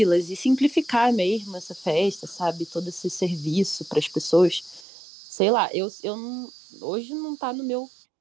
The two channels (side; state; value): left; drops out; at 4.9 s